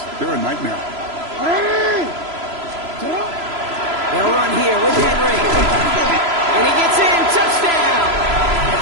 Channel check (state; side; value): late; left; 3.0 ms